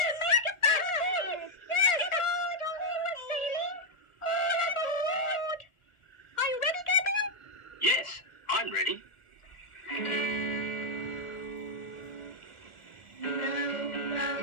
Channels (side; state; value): right; late; 1.4 ms